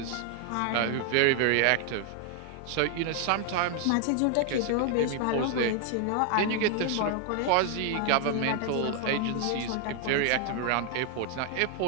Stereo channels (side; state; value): both; different; correlation 0.00